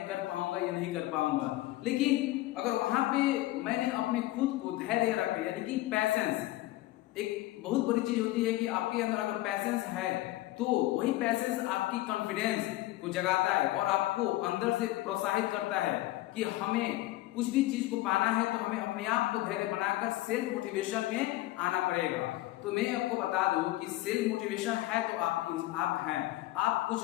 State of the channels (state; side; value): quieter; right; 17.1 dB